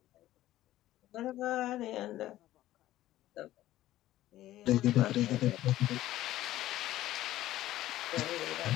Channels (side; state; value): right; quieter; 14.7 dB